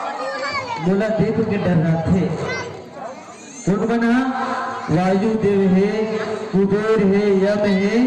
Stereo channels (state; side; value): identical; both; correlation 1.00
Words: बोला देव के डर थे कौन बना वायु देव है कुबेर है यम है